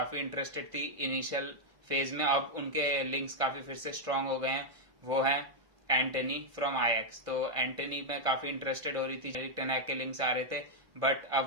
इंटरेस्टेड थी इनिशियल फेज में, अब उनके लिंक्स काफी फिर से स्ट्रांग हो गए हैं, वो है एंटनी फ्रॉम आयैक्स। तो एंटनी में काफी इंटरेस्टेड हो रही थी, एरिक टेन हैग के लिंक्स आ रहे थे, बट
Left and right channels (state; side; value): late; left; 1.5 ms